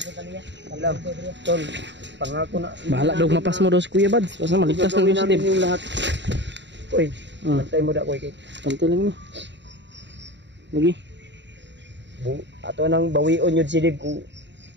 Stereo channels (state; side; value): late; left; 0.52 ms